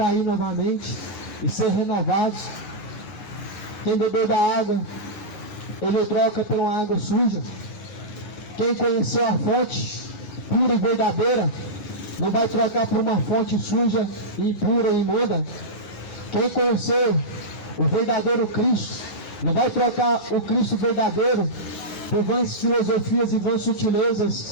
novamente e ser renovados. Quem bebeu da água, ele troca por uma água suja. Quem conheceu a fonte pura e verdadeira, não vai trocar por uma fonte suja, impura e imunda. Quem conheceu o verdadeiro Cristo, não vai trocar o Cristo verdadeiro por vãs filosofias e vãs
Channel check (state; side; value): late; right; 11 ms